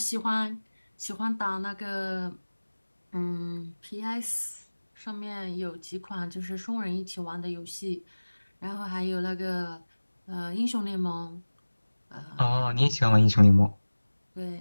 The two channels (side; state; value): both; inverted; correlation -1.00